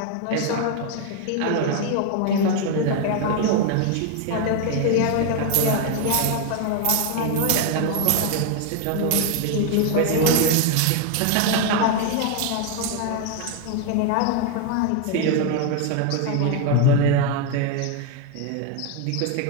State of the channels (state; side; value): different; both; correlation 0.01